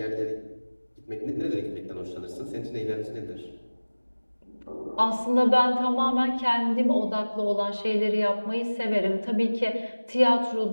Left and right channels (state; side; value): inverted; both; correlation -1.00